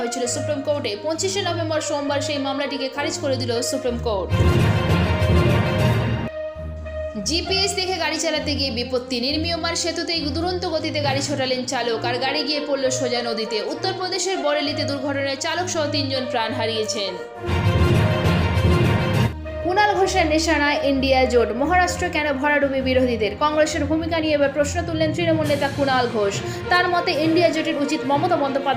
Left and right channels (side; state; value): both; identical; correlation 1.00